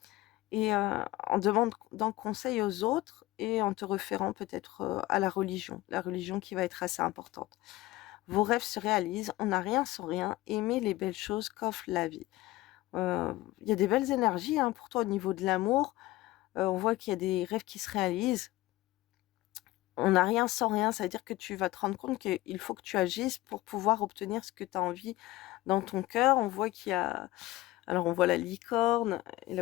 et en demandant conseil aux autres et en te référant peut-être à la religion qui va être assez importante. Vos rêves se réalisent, on n'a rien sans rien, aimez les belles choses qu'offre la vie. Il y a des belles énergies hein, pour toi au niveau de l'amour. On voit qu'il y a des rêves qui se réalisent. On n'a rien sans rien, ça veut dire que tu vas te rendre compte qu'il faut que tu agisses pour pouvoir obtenir ce que tu as envie dans ton cœur. On voit qu'il y a... Alors on voit la licorne, et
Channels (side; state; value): right; quieter; 17.9 dB